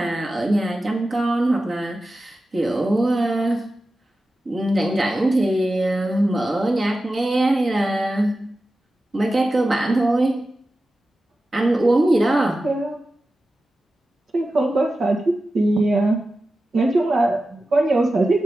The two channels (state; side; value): normal; both; correlation 0.94